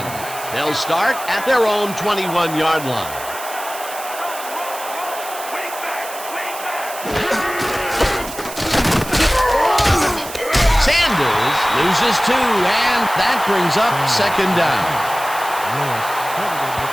They'll start at their own 21-yard line. Sanders Loses 2, and that brings up second down. Lewis credited with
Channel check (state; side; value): noise; right; hiss, 12 dB below the sound